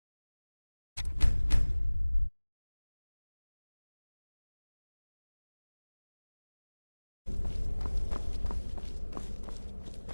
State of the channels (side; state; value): both; inverted; correlation -1.00